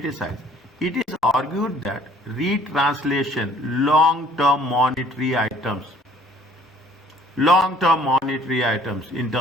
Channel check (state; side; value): normal; both; correlation 0.56